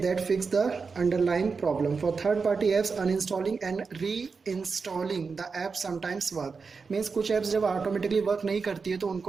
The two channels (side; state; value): left; quieter; 4.9 dB